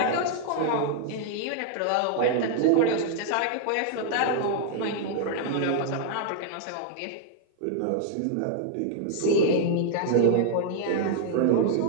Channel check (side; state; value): both; different; correlation -0.01